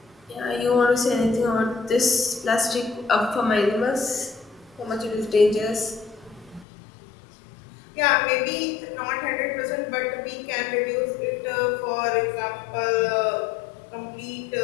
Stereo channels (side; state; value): right; drops out; at 6.7 s